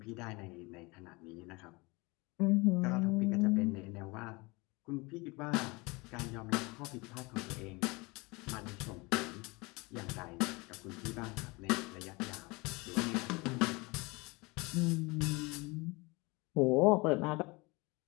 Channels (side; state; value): right; quieter; 25.6 dB